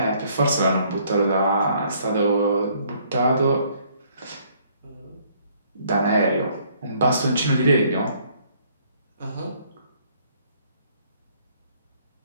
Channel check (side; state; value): both; inverted; correlation -0.64